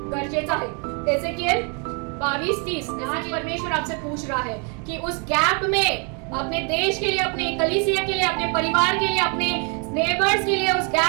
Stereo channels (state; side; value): quieter; left; 35.5 dB